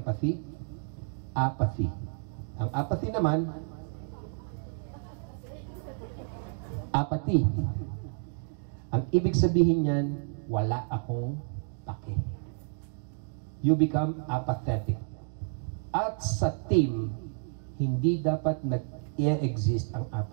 Apathy. Ang apathy naman, apathy. Ang ibig sabihin niyan, wala akong pake. You become apathetic. At sa team, hindi dapat nag-e-exist ang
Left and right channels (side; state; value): left; silent; 58 dB below the other